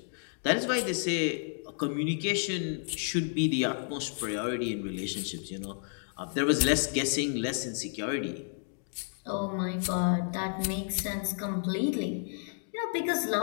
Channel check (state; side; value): silent; right; 57 dB below the other